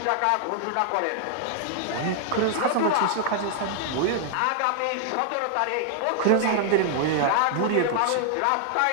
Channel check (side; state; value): both; different; correlation 0.00